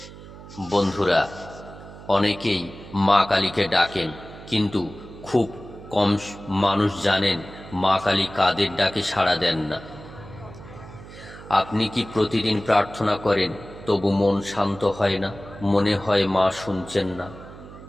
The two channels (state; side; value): noise; right; hum, 16 dB below the sound